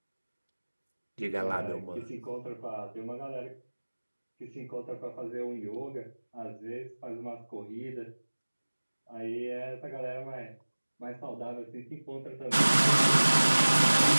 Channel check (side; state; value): both; inverted; correlation -1.00